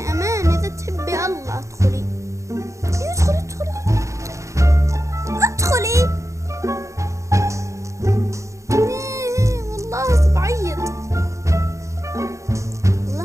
أمانة، إذا تحبي الله ادخلي. ادخلي ادخلي ادخلي. والله بعيط.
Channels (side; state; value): left; late; 0.15 ms